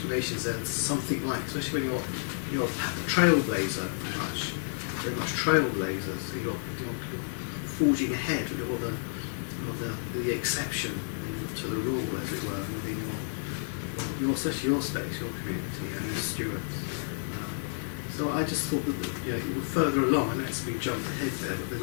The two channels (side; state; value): right; silent; digital silence